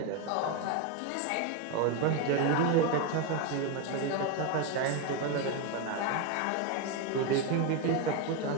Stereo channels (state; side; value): different; both; correlation 0.02